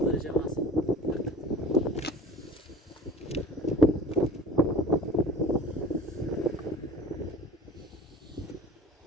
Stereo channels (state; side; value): normal; both; correlation 0.42